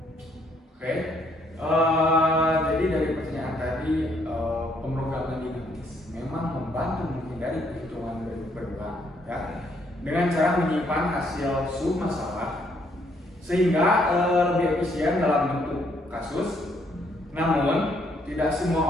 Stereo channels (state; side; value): normal; both; correlation 0.69